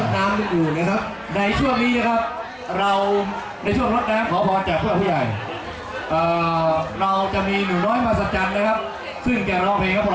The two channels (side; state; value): both; identical; correlation 1.00